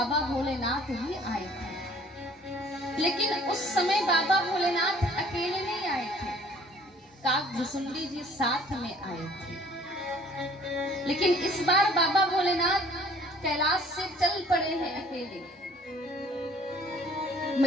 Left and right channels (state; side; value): normal; both; correlation 0.55